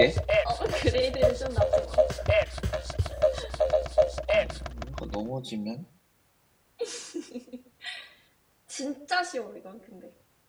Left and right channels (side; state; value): both; identical; correlation 1.00